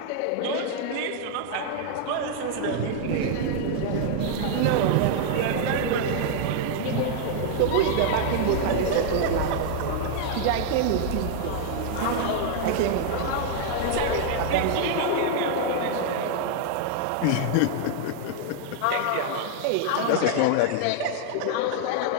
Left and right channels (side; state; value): both; different; correlation -0.01